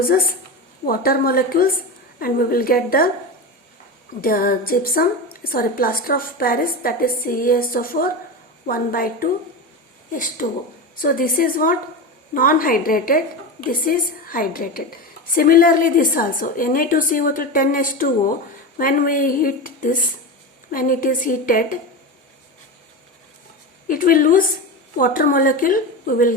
water molecules and we will get the plaster of Paris, that is CaSO4 1/2 H2O. So this is what? Non-hydrated, this is hydrated. Similarly this also, Na2CO3 10H2O, when we heat this, when it is heated, it will lose water molecule, we will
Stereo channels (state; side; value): normal; both; correlation 0.21